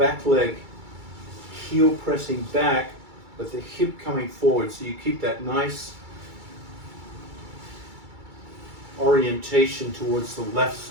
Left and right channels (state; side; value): late; left; 2.3 ms